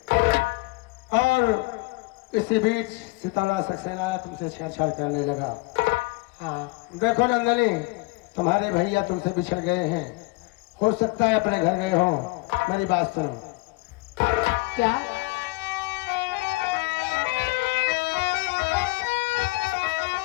और इसी बीच सितमलाल सक्सेना आया, तुमसे छेड़छाड़ करने लगा। हाँ, देखो नंदनी, तुम्हारे भैया तुमसे बिछड़ गए हैं, हो सकता है अपने घर गए हो। मेरी बात सुनो। क्या?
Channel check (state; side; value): quieter; right; 24.2 dB